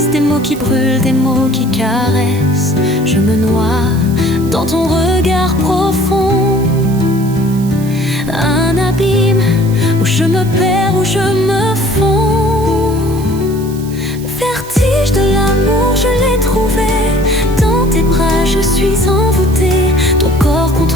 des mots qui brûlent, des mots qui caressent. Je me noie dans ton regard profond. Un abîme où je me perds, où je me fonds. Vertige de l'amour, je l'ai trouvé. Dans tes bras, je suis envoûtée. Ton corps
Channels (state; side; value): noise; right; hiss, 18 dB below the sound